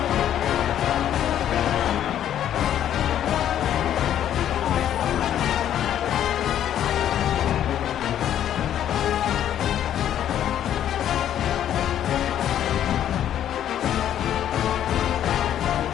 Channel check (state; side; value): quieter; right; 10.7 dB